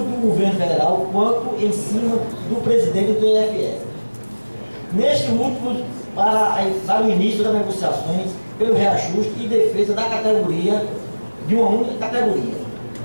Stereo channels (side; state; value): both; inverted; correlation -1.00